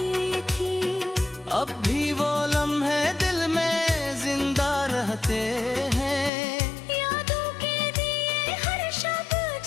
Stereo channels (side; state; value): right; drops out; at 6.3 s